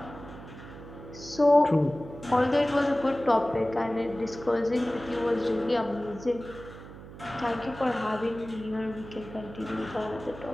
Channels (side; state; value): right; noise; hum, 15 dB below the sound